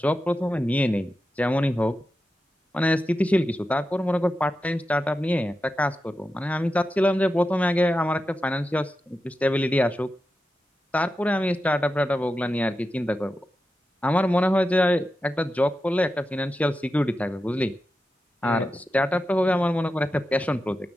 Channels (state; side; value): normal; both; correlation 0.90